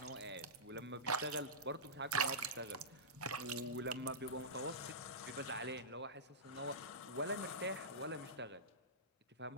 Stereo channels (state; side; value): normal; both; correlation -0.16